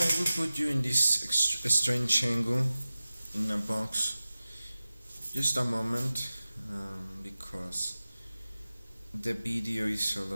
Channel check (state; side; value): inverted; both; correlation -0.96